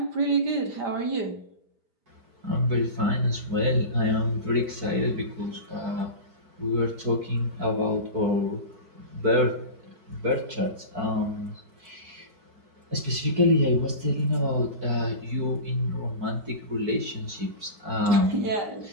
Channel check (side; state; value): left; late; 4.5 ms